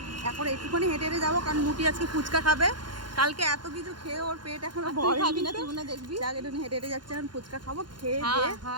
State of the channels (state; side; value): late; left; 0.71 ms